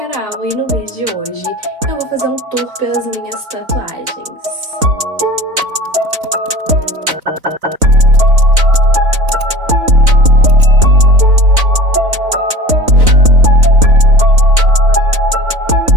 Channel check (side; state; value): left; late; 4.0 ms